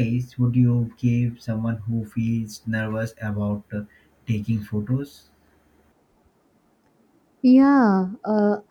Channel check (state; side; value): identical; both; correlation 1.00